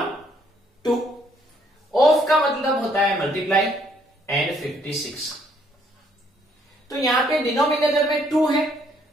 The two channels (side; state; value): both; normal; correlation 0.67